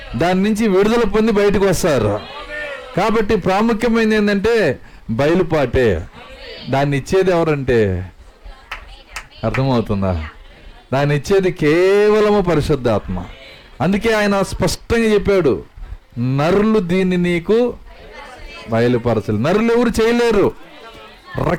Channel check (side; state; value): both; identical; correlation 1.00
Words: దాని నుంచి విడుదల పొంది బయటకు వస్తారు. కాబట్టి ప్రాముఖ్యమైనది ఏంటంటే బయలుపాటే. దాన్ని ఇచ్చేది ఎవరంటే, అర్థమవుతుందా? దాన్ని ఇచ్చేది కేవలము పరిశుద్ధాత్మ. అందుకే ఆయన స్పష్టంగా చెప్పాడు, నరులు దీన్ని నీకు బయలుపరచలేదు. నరులు ఎవరు చేయలేరు,